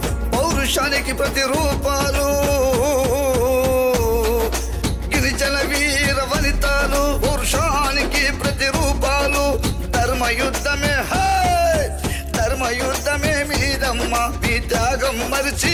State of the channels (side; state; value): both; identical; correlation 1.00